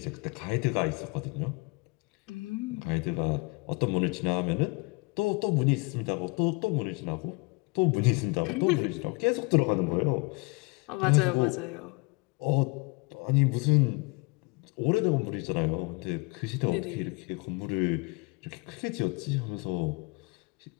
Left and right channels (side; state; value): right; quieter; 27.8 dB